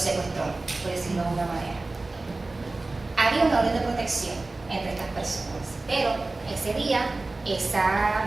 por decirlo de alguna manera. había una orden de protección entre estas personas, pero ese día esa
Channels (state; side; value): quieter; left; 3.2 dB